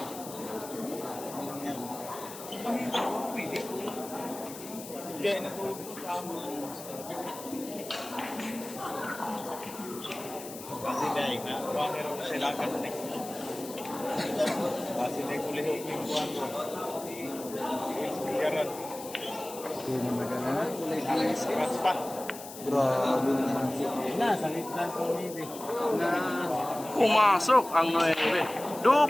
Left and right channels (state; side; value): noise; left; hiss, 13 dB below the sound